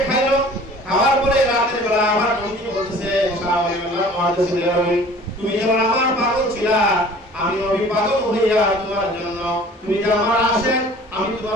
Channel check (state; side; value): normal; both; correlation 0.48